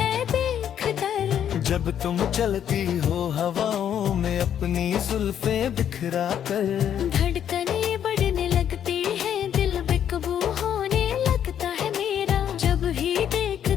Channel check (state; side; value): quieter; right; 9.5 dB